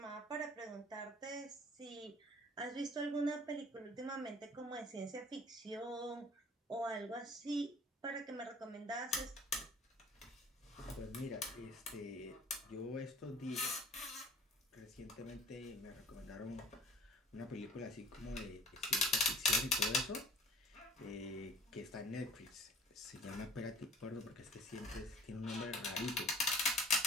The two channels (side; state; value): both; normal; correlation 0.49